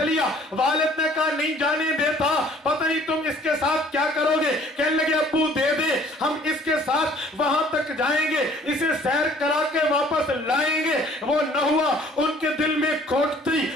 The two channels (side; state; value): both; normal; correlation 0.56